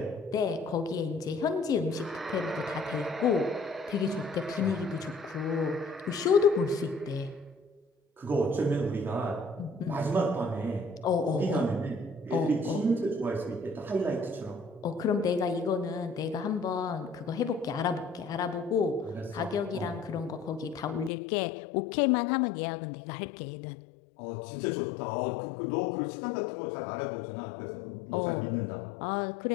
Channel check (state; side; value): drops out; right; at 21.1 s